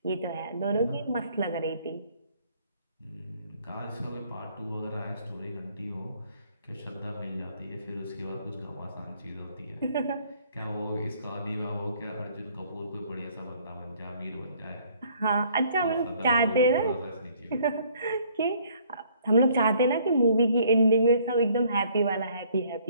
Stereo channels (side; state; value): both; inverted; correlation -0.61